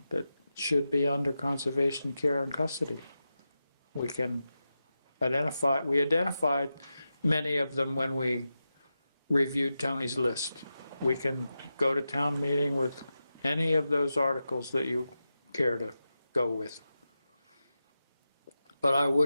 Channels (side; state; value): both; inverted; correlation -0.91